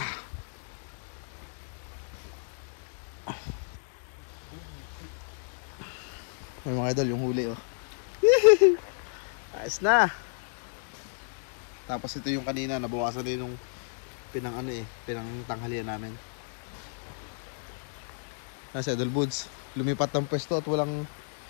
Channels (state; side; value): silent; right; digital silence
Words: May mga idol, yung huli oh. Ayos na. Tapos ito yung kanina, nabawasan din yung pinang tanghalian namin. Nasa Idol Boods, lumipat ng pwesto at walang